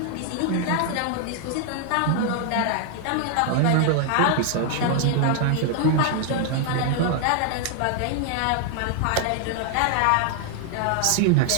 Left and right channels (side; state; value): both; different; correlation 0.00